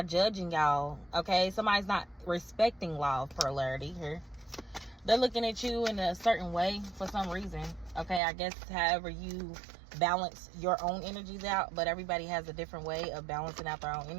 judging y'all, okay? Somebody's not respecting law of polarity here. They're looking at you in a certain way for some reason, okay? I guess however you balance your own energies out, but everybody has a different way of balancing out their own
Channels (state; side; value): drops out; left; at 8.2 s